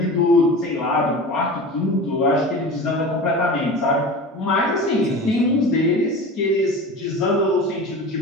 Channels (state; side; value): normal; both; correlation 0.33